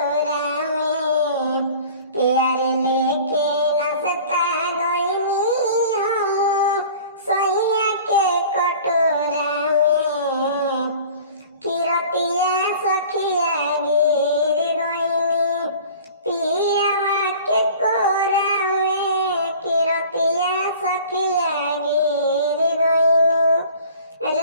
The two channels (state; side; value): inverted; both; correlation -0.45